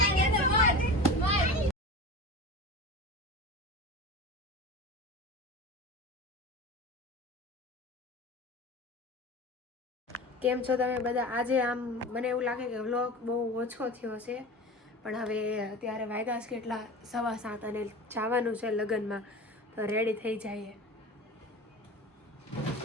કેમ છો તમે બધા? આજે આમ મને એવું લાગે કે વ્લોગ બહુ ઓછો થયો છે, પણ હવે અત્યારે વાગ્યા છે કેટલા 7:15 અને જવાનું છે લગ્નમાં, તો રેડી થઈ જઈએ.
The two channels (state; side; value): normal; both; correlation 0.31